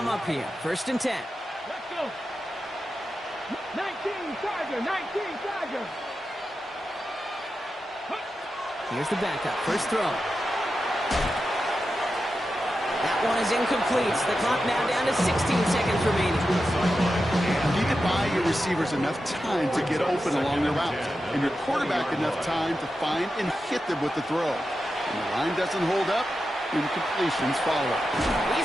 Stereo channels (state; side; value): normal; both; correlation 0.90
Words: up here. First and 10. Let's go. 19 Charger, 19 Charger. Here's the backup. First throw. That one is incomplete. The clock now down to 16 seconds remaining. You need to buy your receivers enough time to get open along their route, and your quarterback enough time to find and hit them with the throw. When the line doesn't hold up, incompletions follow.